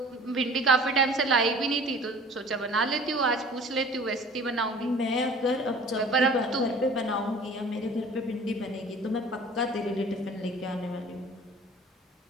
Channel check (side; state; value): both; normal; correlation 0.47